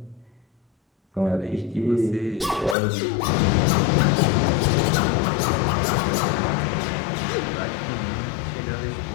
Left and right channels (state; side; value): drops out; right; at 2.8 s